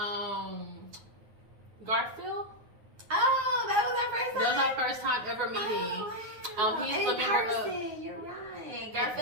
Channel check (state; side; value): late; left; 9.6 ms